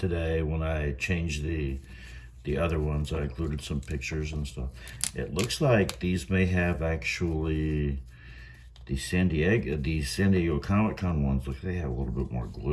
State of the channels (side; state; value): both; identical; correlation 1.00